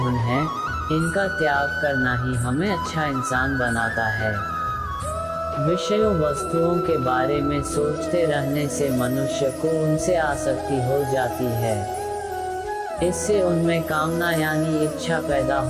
हैं। इनका त्याग करना ही हमें अच्छा इंसान बनाता है। विषयों वस्तुओं के बारे में सोचते रहने से मनुष्य को उनसे आसक्ति हो जाती है। इससे उनमें कामना यानी इच्छा पैदा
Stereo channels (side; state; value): both; identical; correlation 1.00